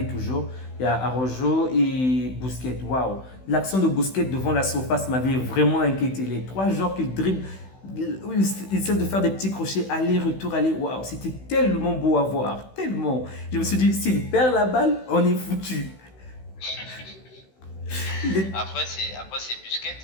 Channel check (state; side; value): late; right; 16 ms